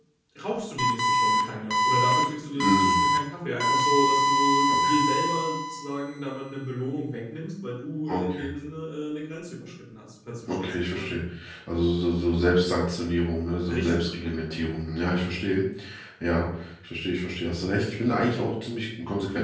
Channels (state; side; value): identical; both; correlation 1.00